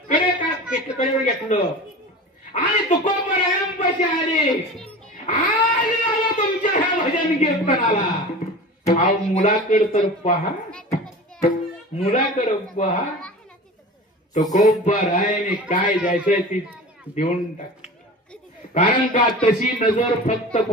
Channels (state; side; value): normal; both; correlation 0.35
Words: कडे कडे घेतलं आणि तुकोबरायांपाशी आले. आले तुमच्या ह्या भजन कीर्तनाला अहो मुलाकडे तर पहा मुलाकडे पहा. तुकोबरायाने काय द्यायचंय ती देऊन टाक. कारण का तशी नजर फक्त